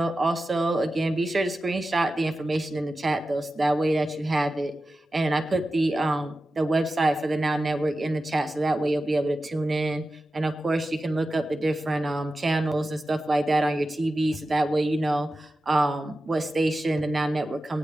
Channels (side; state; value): both; normal; correlation 0.93